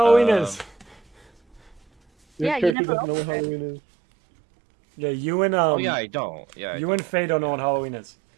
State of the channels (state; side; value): drops out; left; at 2.8 s